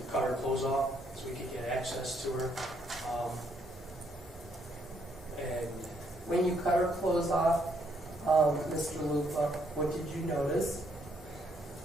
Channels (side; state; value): both; normal; correlation 0.71